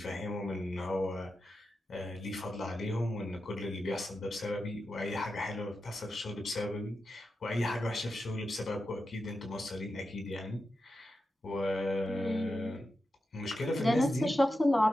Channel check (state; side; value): normal; both; correlation 0.90